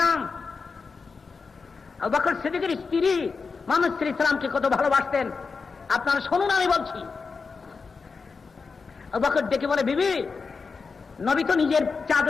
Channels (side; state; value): right; quieter; 4.8 dB